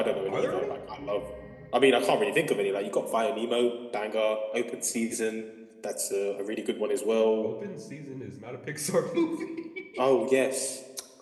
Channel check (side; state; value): both; identical; correlation 1.00